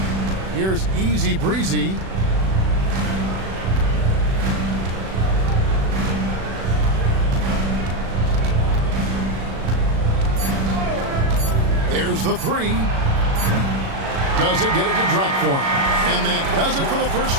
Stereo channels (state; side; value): late; left; 36 ms